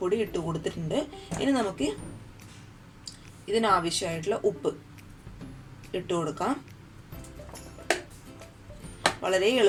ഇട്ട് കൊടുത്തിട്ടുണ്ട്. ഇനി നമുക്ക് ഇതിനാവശ്യമായിട്ടുള്ള ഉപ്പ് ഇട്ട് കൊടുക്കാം. വളരെ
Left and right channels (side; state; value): both; identical; correlation 1.00